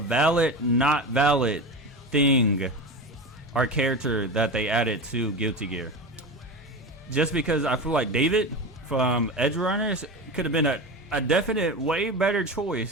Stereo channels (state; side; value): normal; both; correlation 0.25